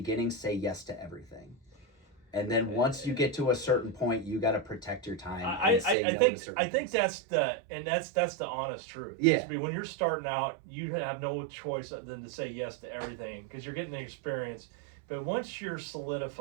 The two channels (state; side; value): drops out; left; at 6.0 s